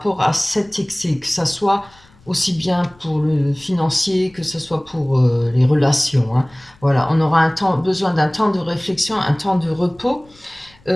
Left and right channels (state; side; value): noise; left; rumble, 29 dB below the sound